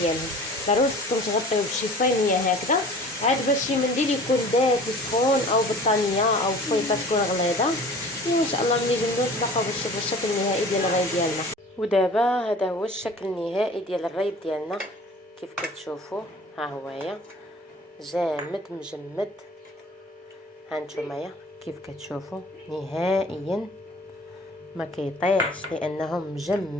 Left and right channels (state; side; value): normal; both; correlation 0.45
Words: ديالهم. ضروري خصكم تغطيو بشي صينيه هكذا عاد باش شي منديل يكون دافي سخون او بطانيه او فويطه تكون غليظه. وان شاء الله ملي جبدو نتلاقاو باش نشوفوا الشكل النهائي ديال الريب ديالنا. ودابا هذا هو الشكل النهائي ديال الريب ديالنا كيف كتشوفوا. ها هويا جامد مجمد. هانتومايا كيف كتشوفوا نهائيا ما كيطيحش لانه